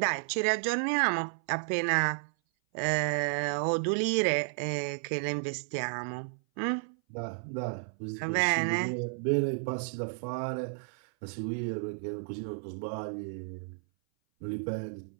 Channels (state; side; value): silent; left; 56 dB below the other